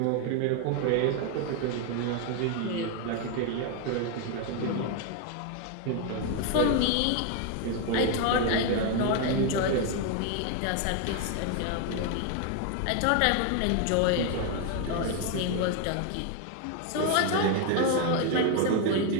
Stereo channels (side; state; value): both; different; correlation 0.01